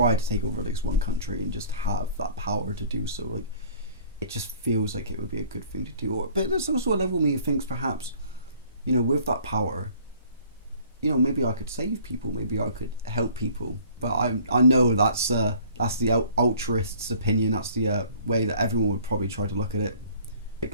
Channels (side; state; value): both; inverted; correlation -0.53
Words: to take over at least one country and just have that power to do so. Like, it just feels like it would be a good thing to do. But there's also a level of me who thinks perhaps, you know, with that power, you know, maybe I could save people, maybe I could help people. But I know that's the altruist's opinion. That's the way that everyone would probably try to look at it.